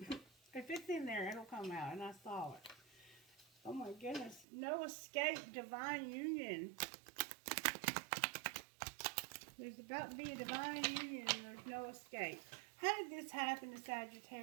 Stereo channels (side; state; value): left; drops out; at 4.5 s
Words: If it's in there, it'll come out. And I saw it. Oh my goodness. No escape, divine union. There's about to be a divine union and there's no escape. How did this happen to